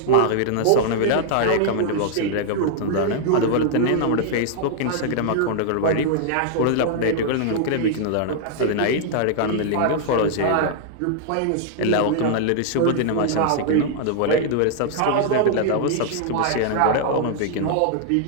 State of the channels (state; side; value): different; both; correlation -0.01